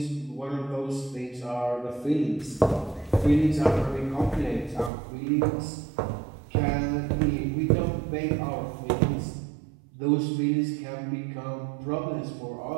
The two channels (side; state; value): left; drops out; at 4.9 s